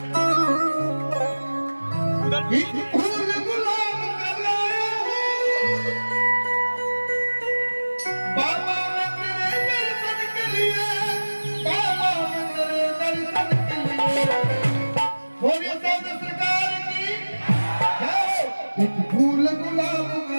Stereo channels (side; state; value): both; inverted; correlation -1.00